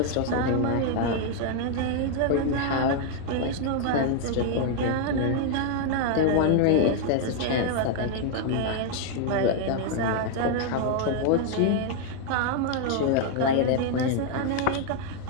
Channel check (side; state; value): both; different; correlation 0.00